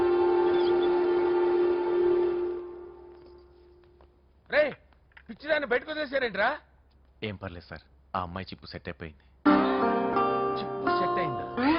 రే, పిచ్చిదాన్ని బయటకు వదిలేసారేంట్రా? ఏం పర్లేదు సార్, ఆ అమ్మాయి చిప్పు సెట్ అయిపోయింది. చిప్పు సెట్ అయిందా?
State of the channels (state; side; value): identical; both; correlation 1.00